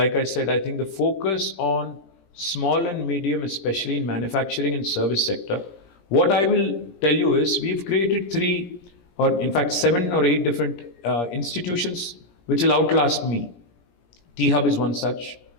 like I said, I think the focus on small and medium, especially in manufacturing and service sector. What I will tell you is, we've created 3 or in fact 7 or 8 different institutions which will outlast me. T-Hub is one such,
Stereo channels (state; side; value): late; right; 17 ms